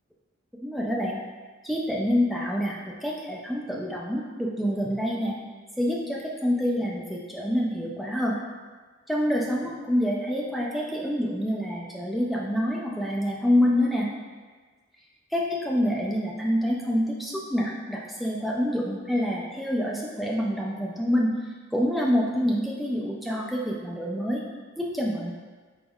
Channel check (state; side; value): normal; both; correlation 0.84